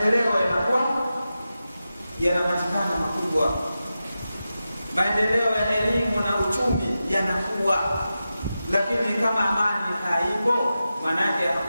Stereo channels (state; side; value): inverted; both; correlation -0.92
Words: yanakuwa yanapatikana makubwa, maendeleo ya elimu na uchumi yanakuwa. Lakini kama amani haipo, maana yake